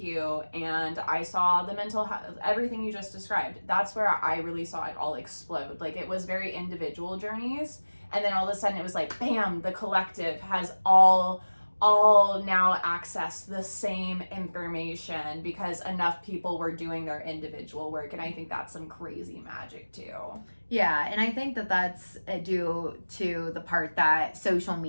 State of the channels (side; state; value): both; inverted; correlation -1.00